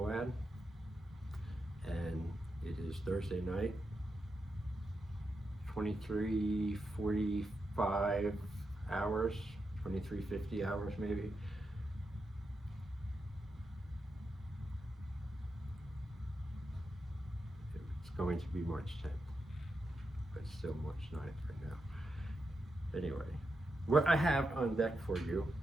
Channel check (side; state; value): both; normal; correlation 0.86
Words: and it is Thursday night, 23:45 hours, 23:50 hours maybe. It's going to be March 10th, but still March 9th right now. Anyway, what I have on deck for you